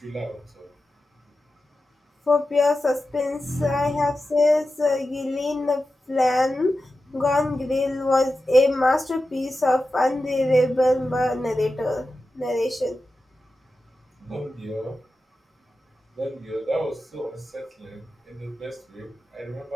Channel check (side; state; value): both; normal; correlation 0.92